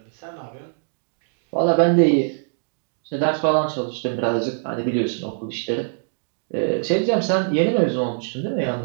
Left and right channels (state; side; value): silent; left; digital silence